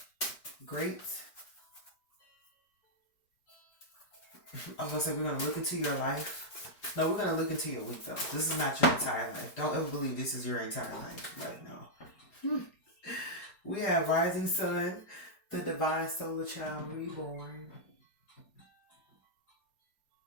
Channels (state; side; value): late; right; 4.8 ms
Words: great. I was going to say, we're going to look into your life. No, we're going to look into your week, though. This is not your entire life. Don't ever believe this is your entire life right now. We have Rising Sun, the Divine Solar Child Reborn.